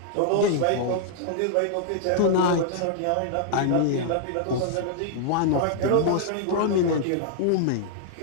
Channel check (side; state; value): both; different; correlation -0.01